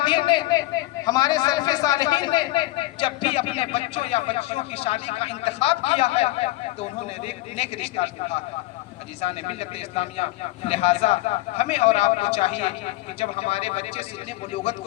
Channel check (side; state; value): right; quieter; 18.3 dB